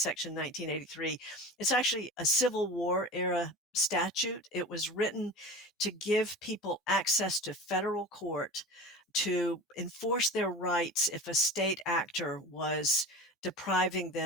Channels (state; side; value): normal; both; correlation 0.33